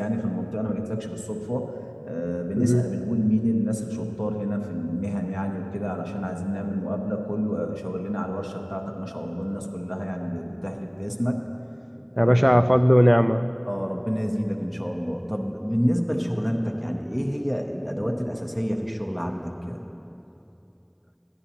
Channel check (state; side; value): identical; both; correlation 1.00